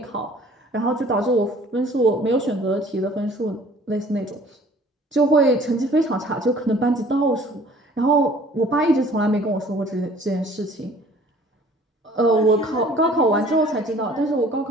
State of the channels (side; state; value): both; normal; correlation 0.52